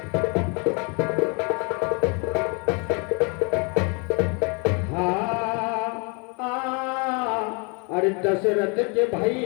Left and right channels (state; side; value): quieter; right; 33.9 dB